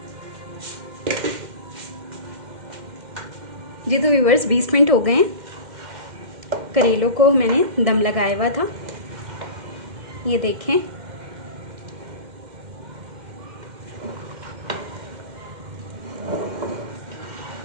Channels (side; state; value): left; late; 2.1 ms